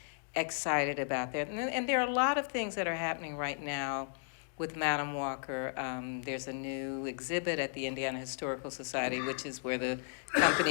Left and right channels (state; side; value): silent; right; digital silence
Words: excited about that. And there are a lot of things that are happening right now with Madam Walker. There's a new exhibit at the Indiana Historical Society, which is where the